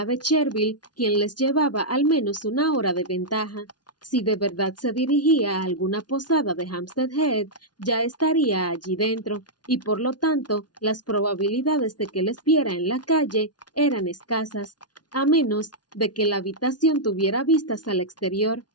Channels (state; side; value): late; right; 0.69 ms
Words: de Chervil, quien les llevaba al menos una hora de ventaja. Si de verdad se dirigía a alguna posada de Hampstead Heath, ya estaría allí dentro, y por lo tanto las probabilidades de que les viera en la calle eran escasas, a menos de que la habitación tuviera vistas al exterior.